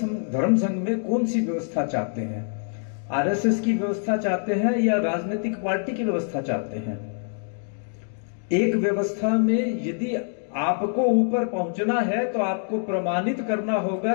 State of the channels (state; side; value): silent; right; digital silence